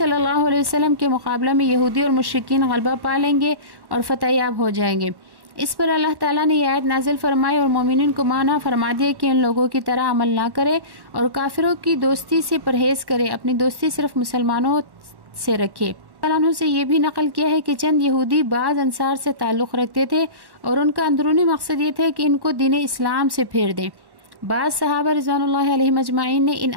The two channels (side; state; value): left; late; 1.1 ms